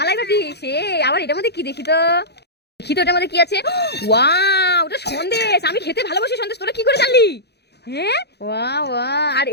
সে, আবার এটার মধ্যে কি দেখি তো, দেখি তো এটার মধ্যে কি আছে। ওয়াও, ওটা সন্দেশ, আমি খেতে ভালোবাসি সন্দেশ, তোরা কি করে জানলি? হ্যাঁ ওয়া ওয়া, আর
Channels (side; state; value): right; late; 0.48 ms